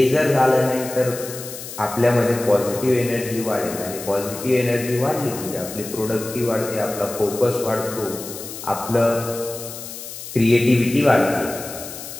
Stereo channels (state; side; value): noise; left; hiss, 11 dB below the sound